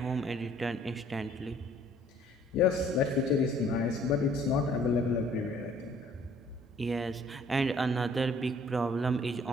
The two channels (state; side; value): normal; both; correlation 0.58